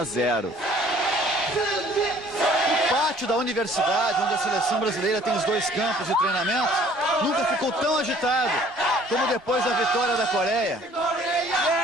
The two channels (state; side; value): normal; both; correlation 0.55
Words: 0. O pátio da universidade, onde a seleção brasileira tem os dois campos de treinamento, nunca ficou tão agitado como depois da vitória da Coreia,